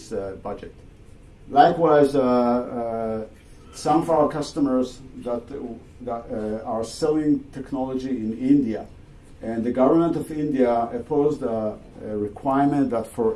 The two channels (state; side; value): identical; both; correlation 1.00